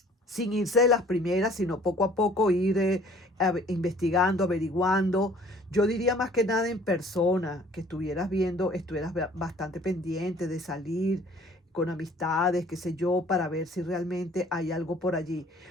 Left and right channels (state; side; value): normal; both; correlation 0.54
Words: sin irse de las primeras, sino poco a poco ir investigando, averiguando. Yo diría más que nada en persona, que estuvieras viendo, estuvieras bastante pendiente de salir con amistades, qué sé yo, para ver si realmente hay algo por allí.